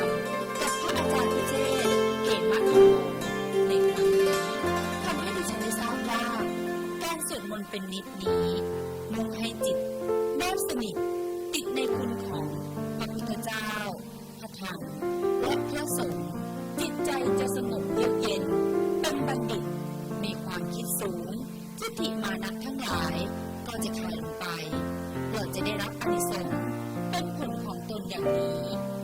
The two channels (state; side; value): identical; both; correlation 1.00